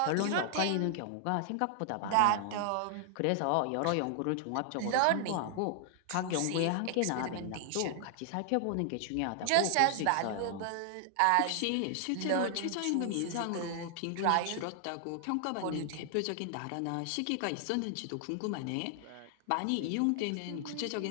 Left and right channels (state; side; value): different; both; correlation 0.00